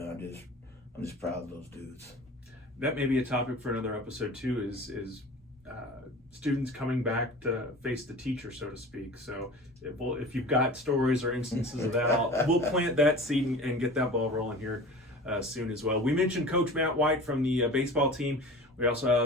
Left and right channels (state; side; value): normal; both; correlation 0.38